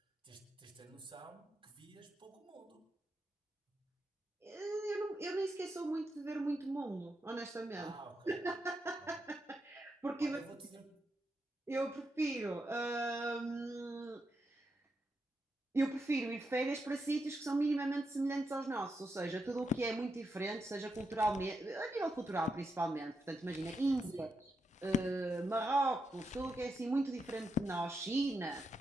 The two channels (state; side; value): normal; both; correlation 0.84